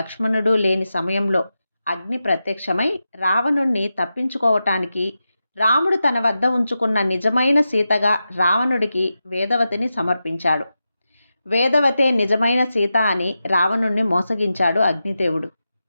లేని సమయంలో అగ్ని ప్రత్యక్షమై రావణుణ్ణి తప్పించుకోవటానికి రాముడు తన వద్ద ఉంచుకున్న నిజమైన సీతగా రావణుడికి వేదవతిని సమర్పించాడు. వేదవతే నిజమైన సీత అని రావణుణ్ణి మోసగించాడు అగ్నిదేవుడు.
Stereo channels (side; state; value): both; inverted; correlation -0.91